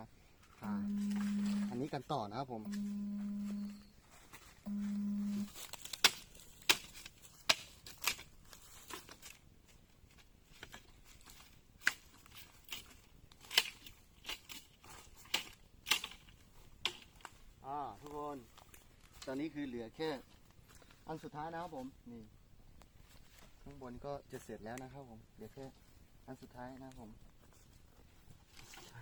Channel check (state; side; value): identical; both; correlation 1.00